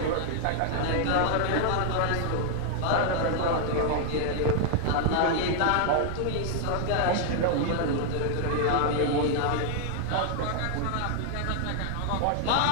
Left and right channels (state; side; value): different; both; correlation 0.00